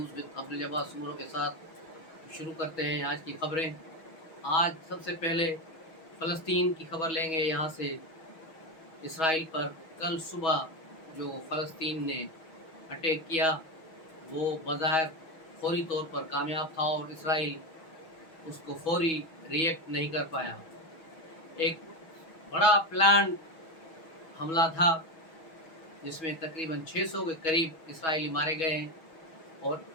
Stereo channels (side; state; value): right; late; 6.2 ms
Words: with Abdul Jabbar Soomro के साथ। शुरू करते हैं आज की खबरें। आज सबसे पहले फ़लस्तीन की खबर लेंगे। यहाँ से इसराइल पर कल सुबह जो फ़लस्तीन ने अटैक किया वो बज़ाहिर फौरी तौर पर कामयाब था और इसराइल उसको फौरी रिएक्ट नहीं कर पाया। एक बड़ा प्लान हमला था जिसमें तकरीबन 600 के करीब इसराइली मारे गए हैं और